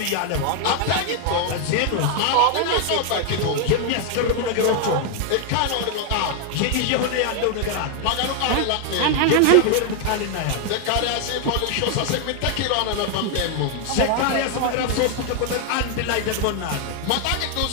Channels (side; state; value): both; different; correlation 0.00